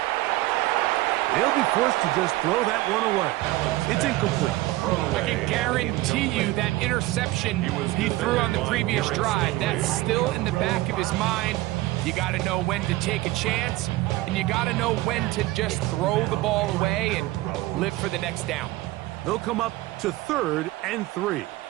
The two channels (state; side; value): quieter; left; 18.3 dB